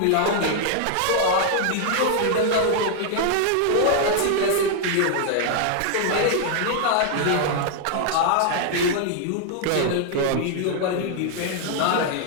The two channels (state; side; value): different; both; correlation 0.00